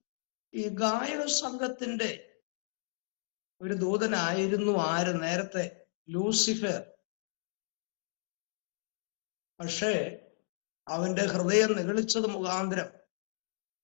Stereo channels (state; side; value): silent; right; 55 dB below the other